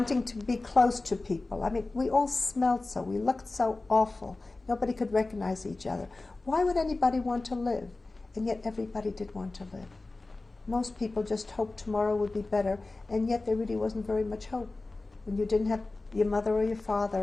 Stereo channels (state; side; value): quieter; right; 3.3 dB